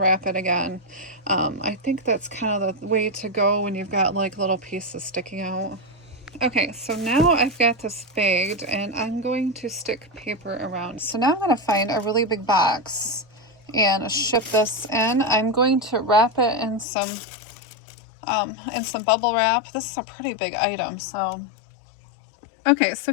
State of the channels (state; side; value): drops out; right; at 16.9 s